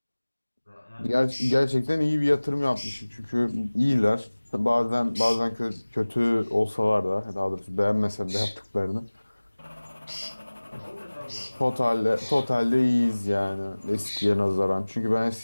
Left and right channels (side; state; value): both; inverted; correlation -1.00